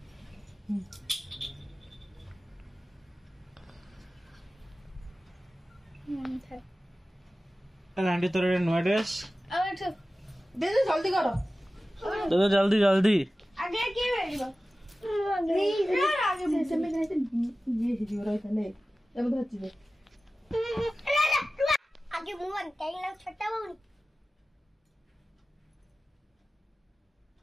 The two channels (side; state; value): both; normal; correlation 0.96